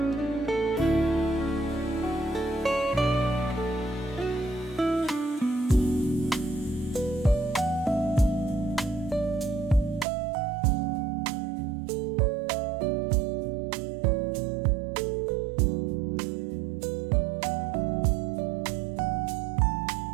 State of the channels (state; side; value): drops out; left; at 10.1 s